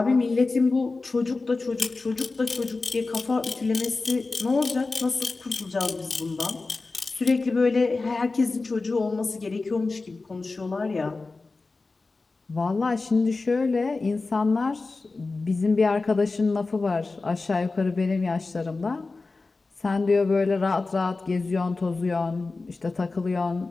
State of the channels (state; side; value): quieter; right; 3.7 dB